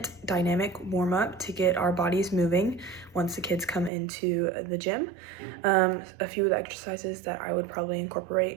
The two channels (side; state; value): left; drops out; at 3.9 s